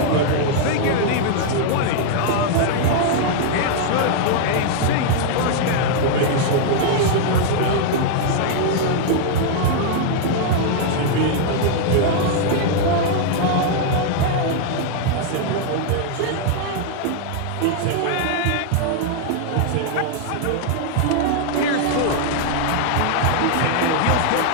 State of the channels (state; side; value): different; both; correlation 0.00